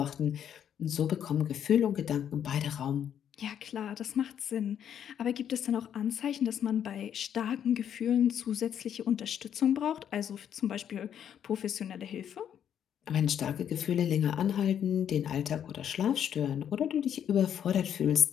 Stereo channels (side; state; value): right; quieter; 9.2 dB